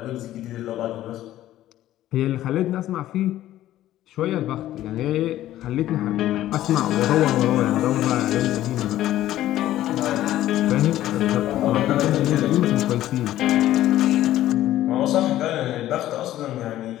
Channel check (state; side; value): quieter; right; 13.7 dB